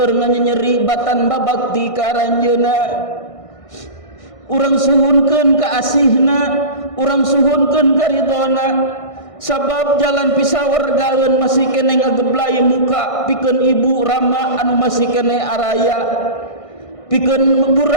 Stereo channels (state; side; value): late; right; 1.5 ms